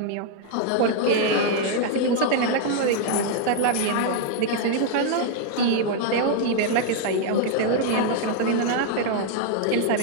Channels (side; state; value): both; different; correlation -0.01